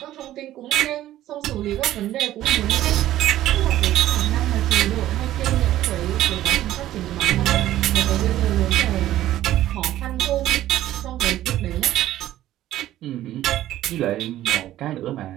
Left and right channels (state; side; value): quieter; left; 13.7 dB